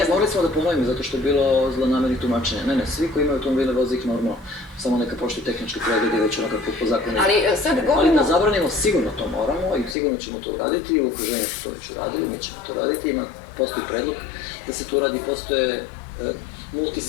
morali smo da ponovimo zato što je bilo zlonamernih tumačenja. Ne, svi koji imaju automobile voze ih normalno, samo neka poštuju tehnički pregled i već onako po zakonu. Ali da zabranimo, sigurno to moramo i sigurno ćemo to uraditi i u okruženju su to već uradili, mi ćemo to uraditi, postoji predlog da se to uradi, postoje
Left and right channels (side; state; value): right; drops out; at 10.0 s